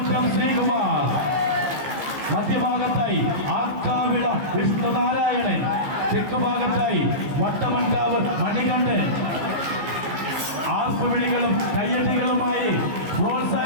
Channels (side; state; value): left; late; 15 ms